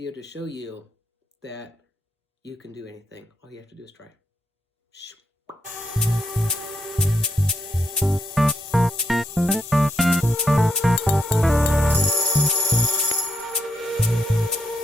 to show you that you can do anything. All you have to do is try. Shoo.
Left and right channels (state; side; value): normal; both; correlation 0.79